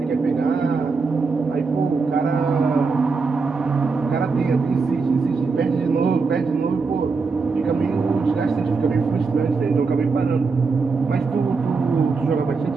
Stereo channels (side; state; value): left; quieter; 4.5 dB